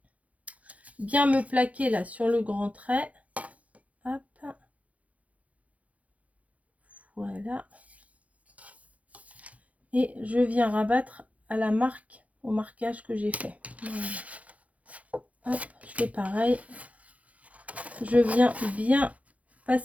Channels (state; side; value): late; left; 0.067 ms